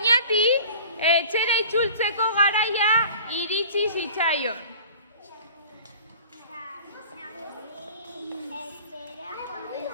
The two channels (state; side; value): inverted; both; correlation -0.43